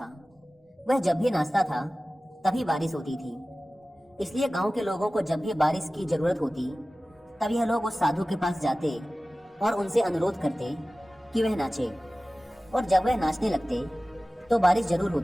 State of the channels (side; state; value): both; normal; correlation 0.97